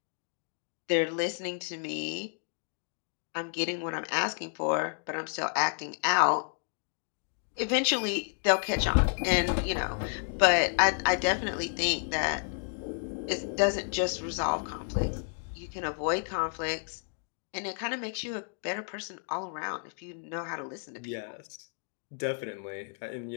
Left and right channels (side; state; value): right; silent; 57 dB below the other